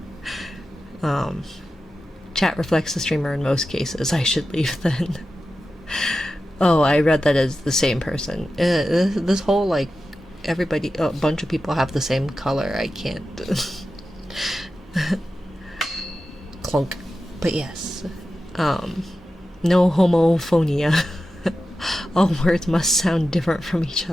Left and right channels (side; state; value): both; normal; correlation 0.92